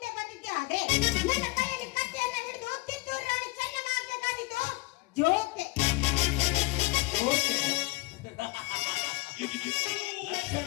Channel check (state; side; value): quieter; right; 23.2 dB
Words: ಬಂದಿದ್ದೆ. ಆದ್ರೆ ನನ್ನ ಕೈಯಲ್ಲಿ ಕತ್ತಿಯನ್ನ ಹಿಡಿದು ಕಿತ್ತೂರು ರಾಣಿ ಚೆನ್ನಮ್ಮ ಆಗ್ಬೇಕಾಗಿತ್ತು. ಜೋಕೆ.